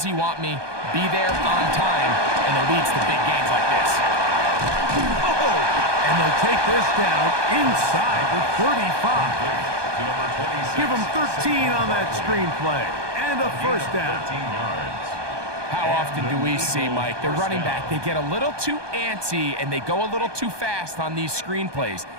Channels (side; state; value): left; late; 1.2 ms